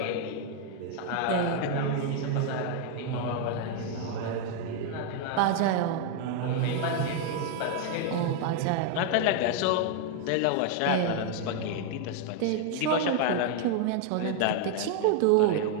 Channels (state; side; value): different; both; correlation 0.00